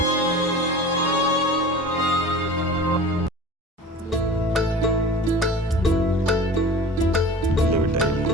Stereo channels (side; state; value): both; normal; correlation 0.39